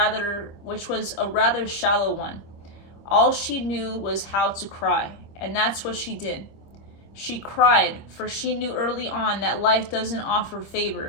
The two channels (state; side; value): late; right; 25 ms